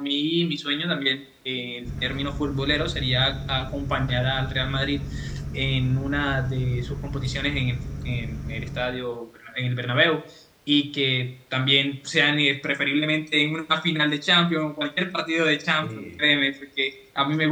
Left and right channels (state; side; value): identical; both; correlation 1.00